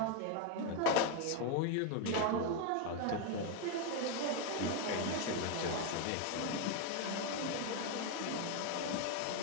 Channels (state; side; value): different; both; correlation 0.01